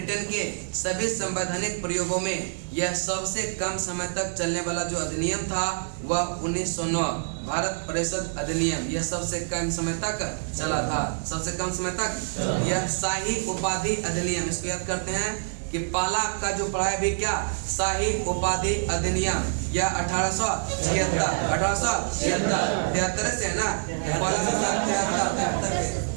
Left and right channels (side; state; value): left; silent; digital silence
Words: के सभी संवैधानिक प्रयोगों में यह सबसे कम समय तक चलने वाला जो अधिनियम था वह 1909 भारत परिषद अधिनियम यह सबसे कम समय तक चला था, सबसे कम समय तक। यह शाही उपाधि अधिनियम, इसको याद करते हैं कि पहला आपका जो पढ़ा है भी क्या, शाही उपाधि अधिनियम, यह 1873 से है ना, पहला